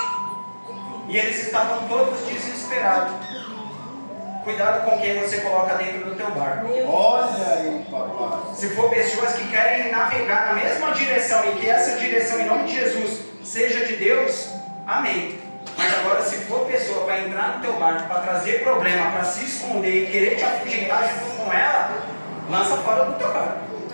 E eles estavam todos desesperados. Cuidado com quem você coloca dentro do teu barco. Olha aí, papai. Se for pessoas que querem navegar na mesma direção e que essa direção, em nome de Jesus, seja de Deus, amém. Mas agora, se for pessoa para entrar no teu barco, para trazer problema, para se esconder e querer te afugentar junto com ela, lança fora do teu barco.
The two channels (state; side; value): inverted; both; correlation -1.00